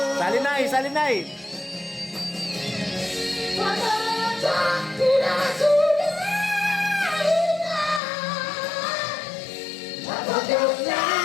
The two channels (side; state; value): right; drops out; at 8.0 s